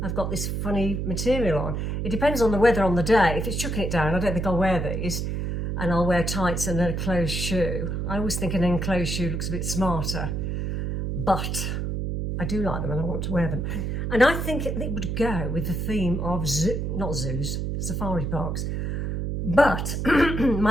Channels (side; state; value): right; noise; hum, 2 dB below the sound